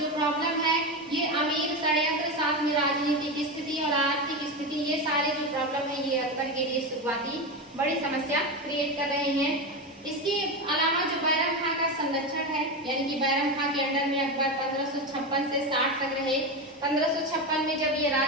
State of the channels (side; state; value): both; normal; correlation 0.17